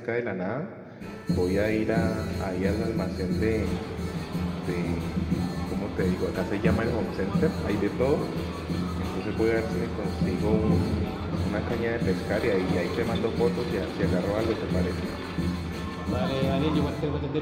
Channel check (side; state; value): both; identical; correlation 1.00